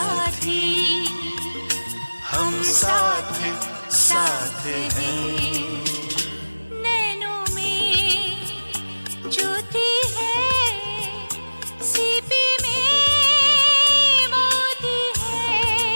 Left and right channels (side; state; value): both; inverted; correlation -1.00